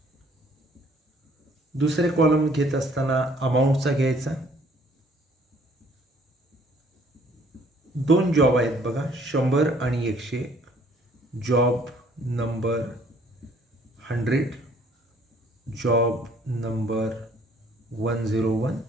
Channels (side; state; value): both; normal; correlation 0.60